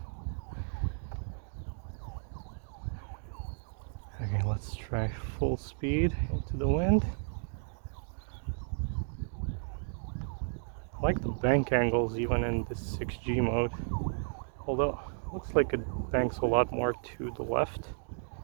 Okay, let's try full speed into the wind. I like the bank angles even in this 6G mode, although it looks like it banks a lot more to the left.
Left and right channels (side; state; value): left; silent; digital silence